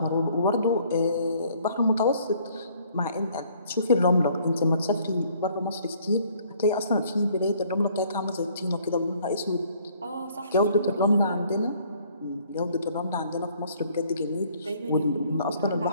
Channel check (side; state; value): both; inverted; correlation -0.61